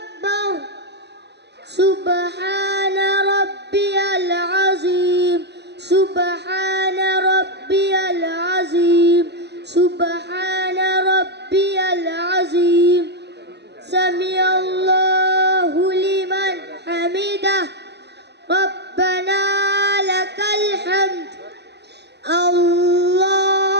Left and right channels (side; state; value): left; late; 0.49 ms